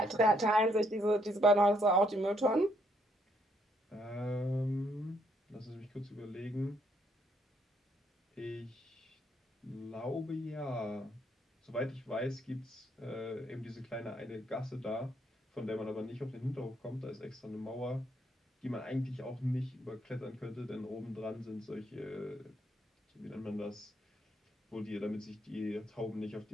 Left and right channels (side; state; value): both; normal; correlation 0.72